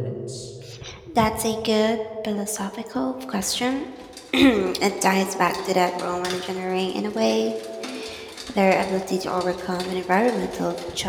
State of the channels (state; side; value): identical; both; correlation 1.00